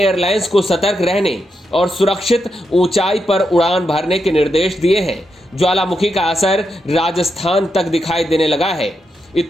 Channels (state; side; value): normal; both; correlation 0.84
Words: को सतर्क रहने और सुरक्षित ऊंचाई पर उड़ान भरने के निर्देश दिए हैं। ज्वालामुखी का असर राजस्थान तक दिखाई देने लगा है।